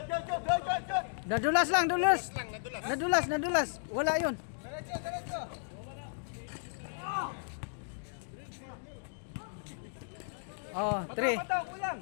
Nadulas lang. Nadulas. Wala yun. Oh,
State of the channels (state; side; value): silent; right; digital silence